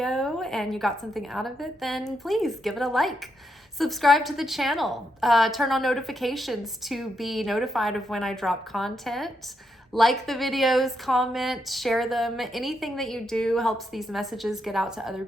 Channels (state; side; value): normal; both; correlation 0.80